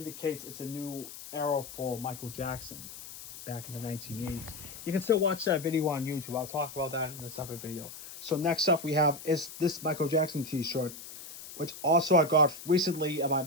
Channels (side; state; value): left; noise; hiss, 13 dB below the sound